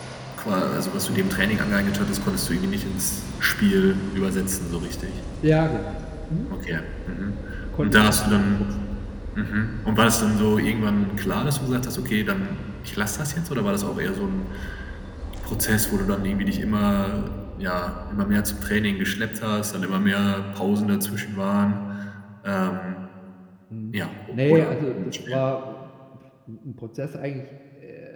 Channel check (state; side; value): identical; both; correlation 1.00